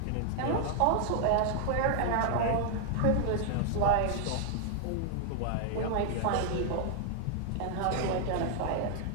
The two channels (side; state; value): both; different; correlation 0.00